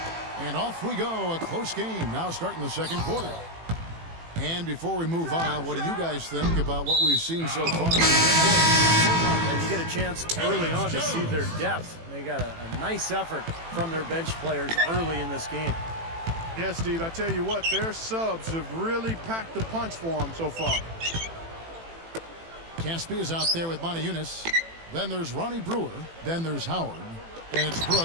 And off we go, a close game now starting the second quarter. And before we move on, what do you guys think about what we've seen so far? And you get a chance early on to see their depth. They got a nice effort from their bench players early in this game. Yeah, Steve, I tell you what, their subs have really packed the punch for them so far. Caspi is out there with Montejunas. Then there's Ronnie Brewer. Then there's Howard. And it's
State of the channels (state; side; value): late; left; 18 ms